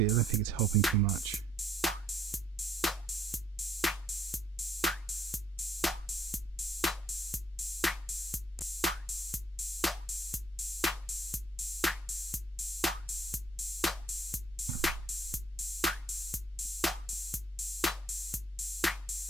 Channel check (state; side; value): normal; both; correlation 0.67